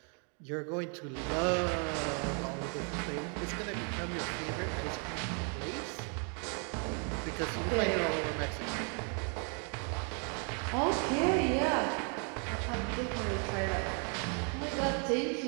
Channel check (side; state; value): left; quieter; 39.3 dB